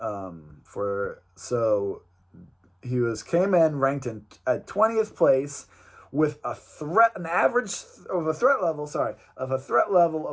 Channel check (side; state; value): both; identical; correlation 1.00